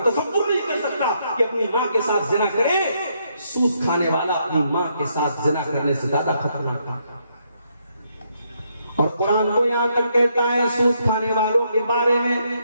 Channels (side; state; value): both; inverted; correlation -0.75